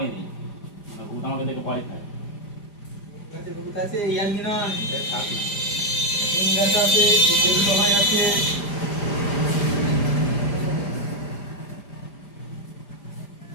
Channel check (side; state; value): right; late; 5.0 ms